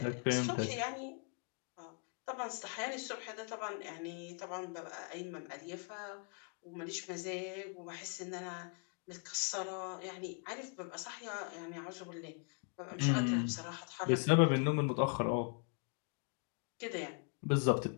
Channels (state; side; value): quieter; right; 38.9 dB